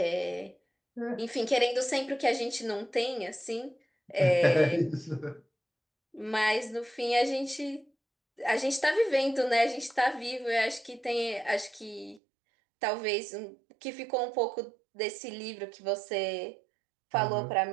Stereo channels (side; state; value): left; drops out; at 12.2 s